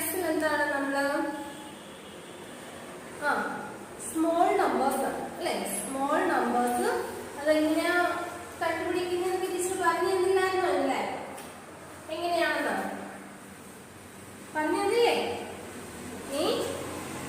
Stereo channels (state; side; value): identical; both; correlation 1.00